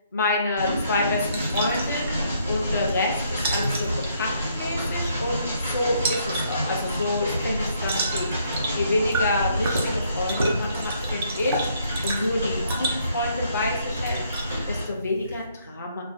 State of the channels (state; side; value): inverted; both; correlation -0.69